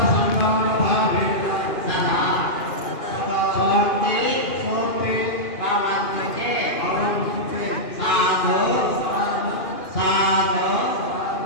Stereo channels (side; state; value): right; late; 2.4 ms